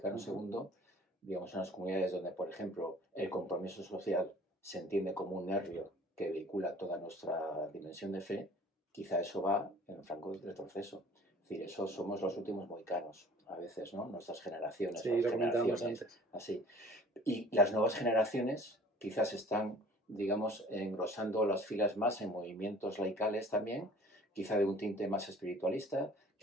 II, digamos, en las comunidades donde, por ejemplo, el compromiso social se entiende como un nervio que vehicula toda nuestra dimensión de fe, quizá eso va en franco retroceso. Es decir, eso somos los últimos mohicanos, a veces, ¿no? Nuestras generaciones. Sí, lo comentábamos antes. Así. Y las nuevas generaciones quizás están, digamos, engrosando las filas más en movimientos laicales también, quizá de un tinte más espiritualista,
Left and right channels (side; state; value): both; normal; correlation 0.49